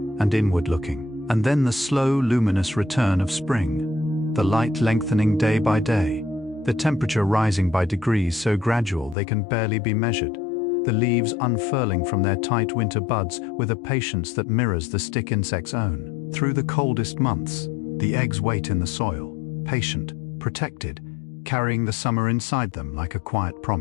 and inward-looking. And then the slow, luminous return of spring, the light lengthening day by day, the temperature rising by degrees so gradual they can barely be measured, the leaves unfurling from their tight winter buds with a patience that mirrors the stick insect's own. Through the coldest months, the eggs wait in the soil, patient, protected, carrying the summer inside them like a quiet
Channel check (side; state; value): right; drops out; at 9.2 s